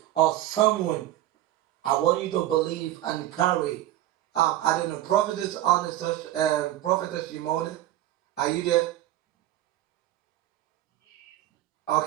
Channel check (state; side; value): quieter; left; 14.0 dB